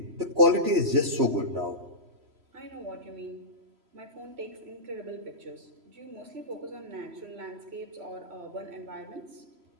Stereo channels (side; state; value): left; late; 3.0 ms